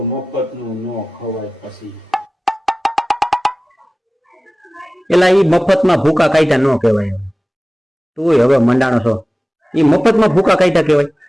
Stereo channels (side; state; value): both; normal; correlation 0.97